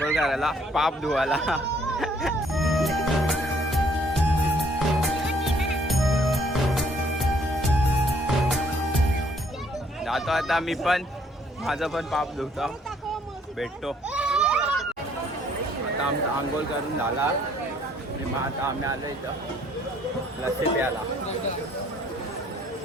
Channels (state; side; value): normal; both; correlation 0.63